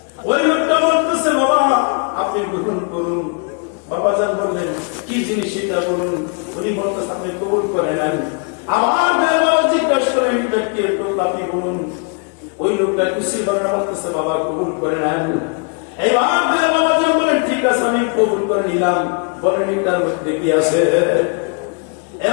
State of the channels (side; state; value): right; quieter; 39.4 dB